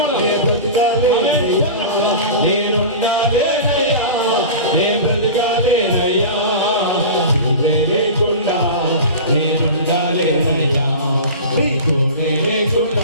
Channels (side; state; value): both; inverted; correlation -0.32